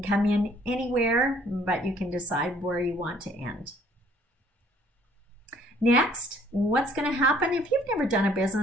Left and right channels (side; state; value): both; normal; correlation 0.60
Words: come in anywhere, but you can decide where you want to end. Next, what's going to happen? If you've never done a